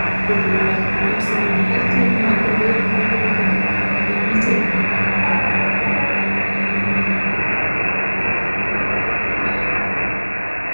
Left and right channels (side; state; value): both; inverted; correlation -1.00